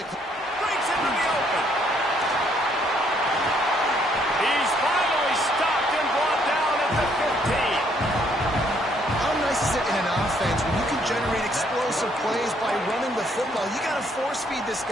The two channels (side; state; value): both; normal; correlation 0.68